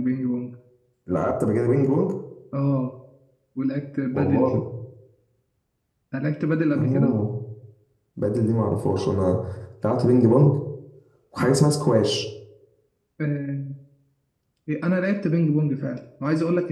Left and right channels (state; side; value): identical; both; correlation 1.00